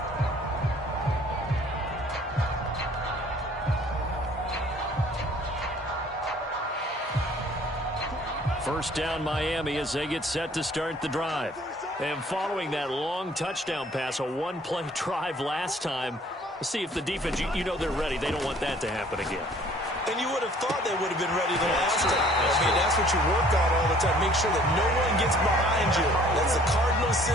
First down Miami as they get set to start the drive. And following that long touchdown pass, a one-play drive last time, let's see if the defense, you know they're ready. They don't want that to happen again. And you would have thought they would have been ready the last time. That's what you work on all the time. Make sure that no one gets behind you. That's the cardinal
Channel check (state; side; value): normal; both; correlation 0.56